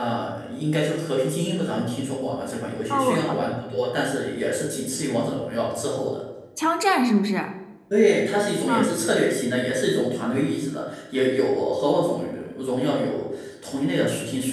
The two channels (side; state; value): both; identical; correlation 1.00